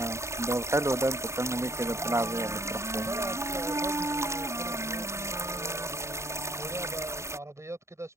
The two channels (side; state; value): left; late; 0.14 ms